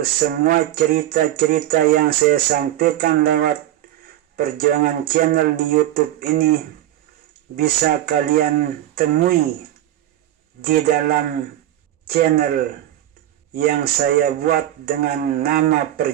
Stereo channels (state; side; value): quieter; left; 13.0 dB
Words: semua cerita-cerita yang saya sampaikan lewat Perjuangan Channel di YouTube ini bisa kalian temui di dalam channel yang saya buat dengan nama